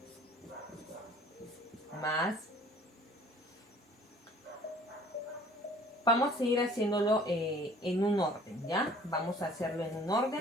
Más. Vamos a ir haciéndolo en un orden, ¿ya? Vamos a hacerlo en un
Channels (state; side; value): normal; both; correlation 0.52